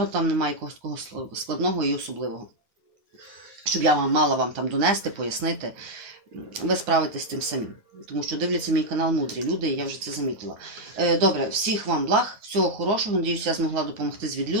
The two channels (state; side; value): late; left; 9.6 ms